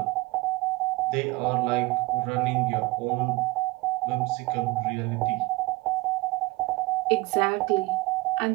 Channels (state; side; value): quieter; left; 22.1 dB